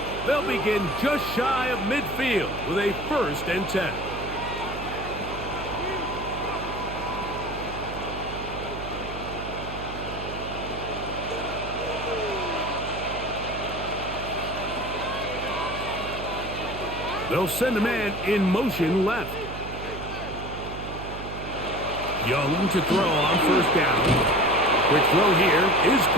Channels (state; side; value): noise; right; hum, 9 dB below the sound